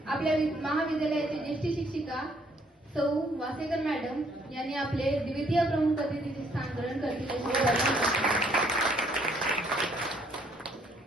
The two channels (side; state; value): both; normal; correlation 0.66